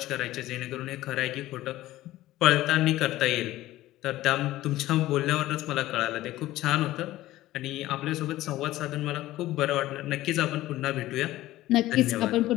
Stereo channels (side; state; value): right; quieter; 15.9 dB